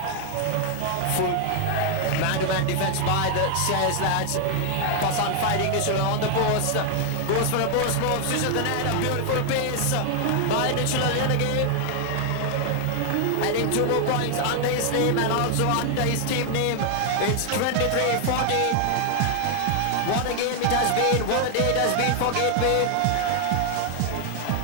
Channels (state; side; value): different; both; correlation 0.00